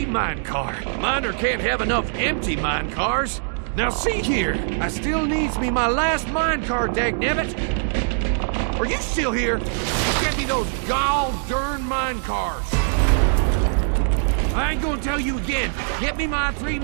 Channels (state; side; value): silent; left; digital silence